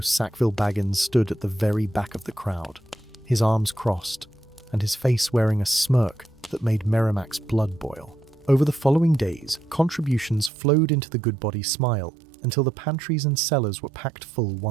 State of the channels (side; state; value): left; drops out; at 10.5 s